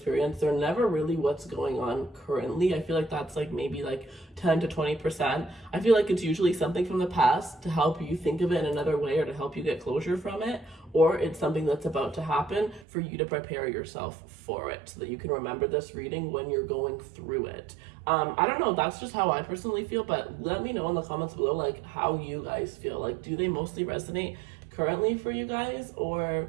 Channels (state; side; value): drops out; left; at 12.9 s